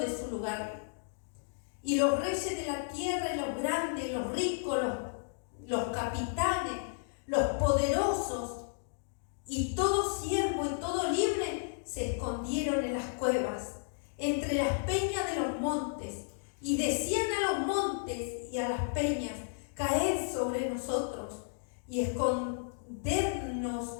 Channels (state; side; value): silent; right; digital silence